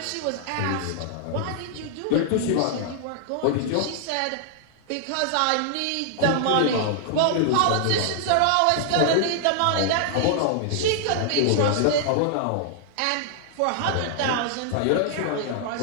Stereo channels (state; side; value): different; both; correlation -0.01